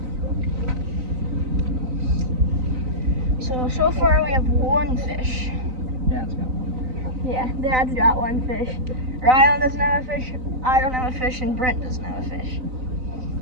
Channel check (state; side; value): late; left; 3.9 ms